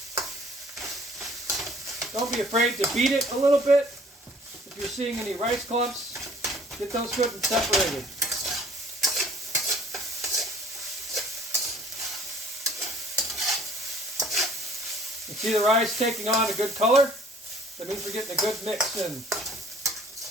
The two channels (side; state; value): both; normal; correlation 0.55